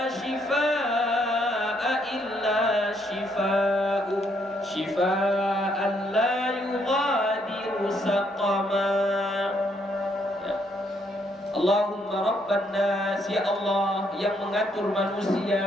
shifaa illa shifa'u shifaan la yughadiru saqama. Allahumma rabban nas, ya Allah yang mengatur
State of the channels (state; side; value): normal; both; correlation 0.72